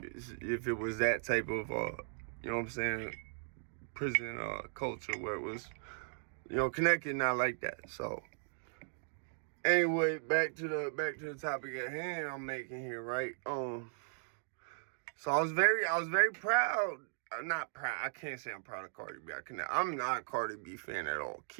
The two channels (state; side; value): silent; left; digital silence